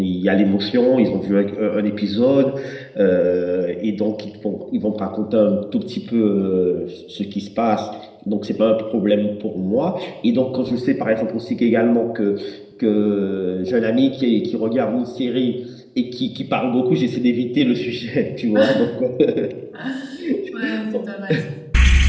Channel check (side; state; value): both; identical; correlation 1.00